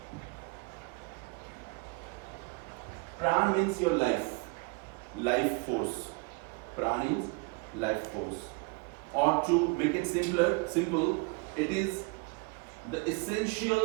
Pran means your life force. Pran is life force. Or to make it simple, it is the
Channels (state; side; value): quieter; left; 29.7 dB